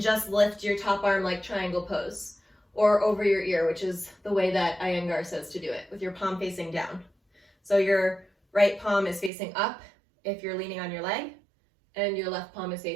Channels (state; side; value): drops out; left; at 9.3 s